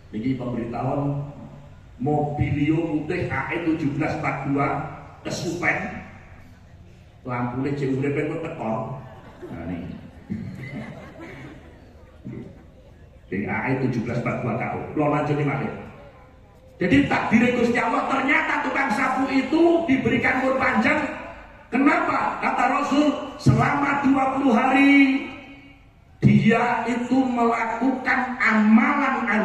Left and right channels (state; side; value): identical; both; correlation 1.00